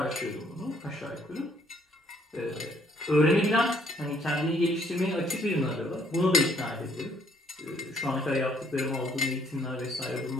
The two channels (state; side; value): normal; both; correlation 0.65